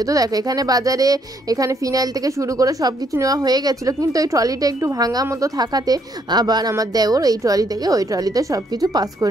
তো দেখো এখানে বাজারে এখানে ফিনাইল থেকে শুরু করে সব কিছু নেওয়া হয়ে গেছিলো, কিন্তু ওই ট্রলিটা একটু ভাঙা মতো থাকাতে আবার আমার দেওর এই ট্রলি থেকে ওই ট্রলিতে সব কিছু পাস করে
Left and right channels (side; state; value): both; normal; correlation 0.70